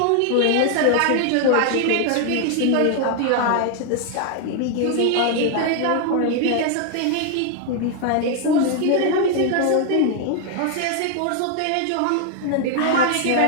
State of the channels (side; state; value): both; different; correlation 0.00